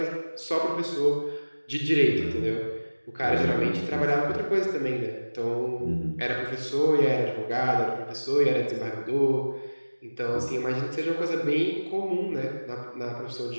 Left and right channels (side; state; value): both; inverted; correlation -1.00